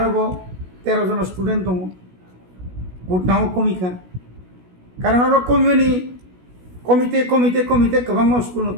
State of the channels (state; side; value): late; left; 16 ms